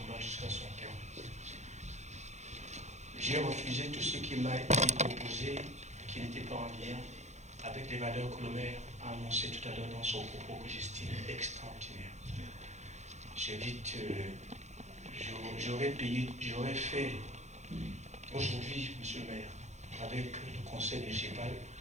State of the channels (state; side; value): late; left; 0.33 ms